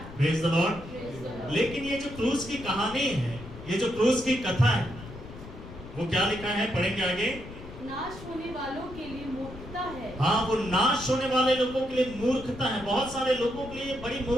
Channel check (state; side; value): noise; left; rumble, 14 dB below the sound